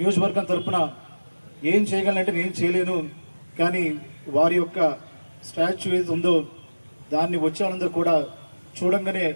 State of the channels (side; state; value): both; inverted; correlation -1.00